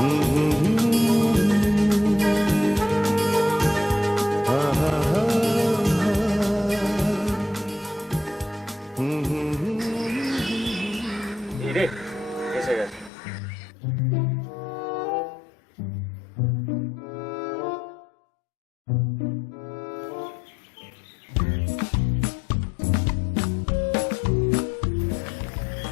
রে এসে গেছে।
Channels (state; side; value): drops out; right; at 13.1 s